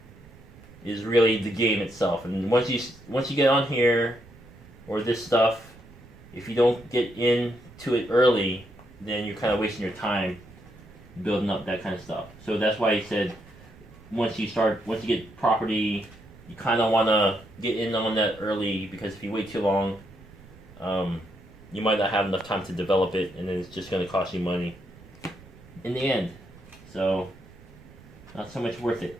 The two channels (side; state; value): right; noise; rumble, 21 dB below the sound